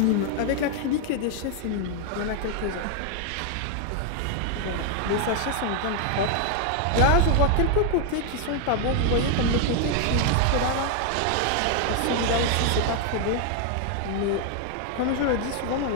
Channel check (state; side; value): different; both; correlation 0.00